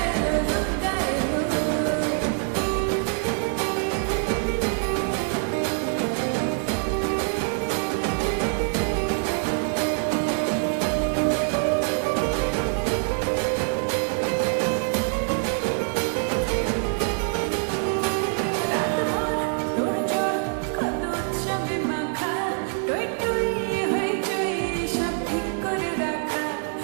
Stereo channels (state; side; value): silent; left; 59 dB below the other